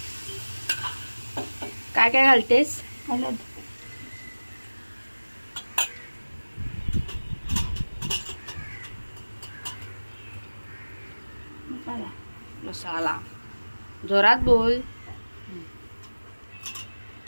काय काय घालतेस? हळद मसाला. जोरात बोल.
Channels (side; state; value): both; inverted; correlation -1.00